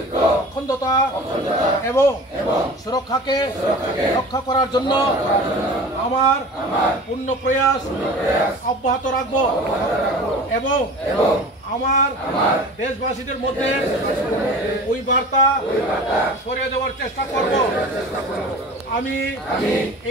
অখণ্ডতা এবং সুরক্ষাকে রক্ষা করার জন্য আমার পূর্ণ প্রয়াস অব্যাহত রাখব এবং আমার দেশবাসীদের মধ্যে ওই বার্তা ছড়িয়ে দেওয়ার চেষ্টা করব আমি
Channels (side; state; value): both; normal; correlation 0.39